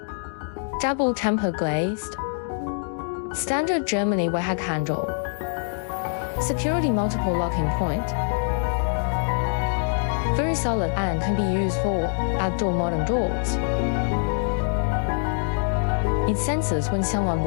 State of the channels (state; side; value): silent; right; digital silence